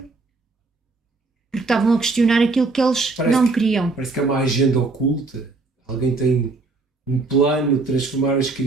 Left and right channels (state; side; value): quieter; left; 3.7 dB